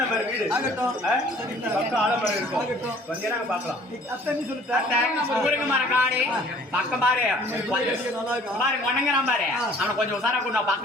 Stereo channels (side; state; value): both; normal; correlation 0.54